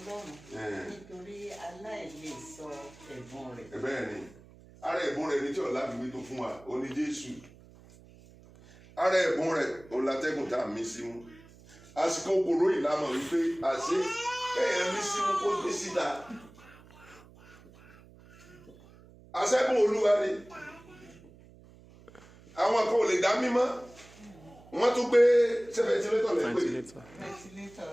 nítorí aláìlè sọ ẹ̀bùn rẹ̀. Bẹ́ẹ̀ ni ara ẹ̀bùn rẹ̀ ní tí ọ̀la fi tó fún wa ó ní Jésù. Ara ẹ̀bùn rẹ̀ òun látẹ́gùn tá a mí símú. Àsìkò òkòrò ìlànà wípé àṣé kéèyàn mí símú kó gbé síta. Àṣẹ́gun Olúwa ni. Àwọn kan ò lè dá mímọ́. Wọ́n tún gbé ventilator lẹ́gbẹ̀ẹ́.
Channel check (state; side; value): noise; right; hum, 23 dB below the sound